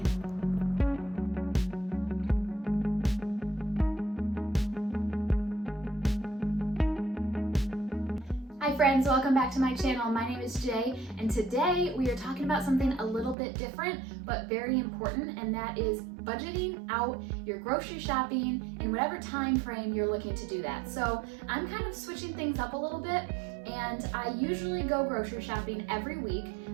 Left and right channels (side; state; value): left; drops out; at 13.4 s